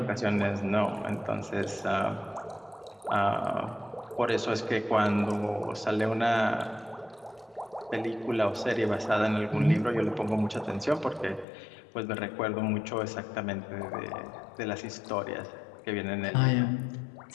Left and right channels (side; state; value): right; drops out; at 11.5 s